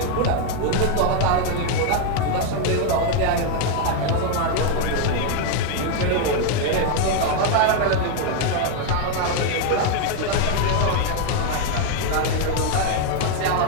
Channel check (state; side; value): different; both; correlation 0.01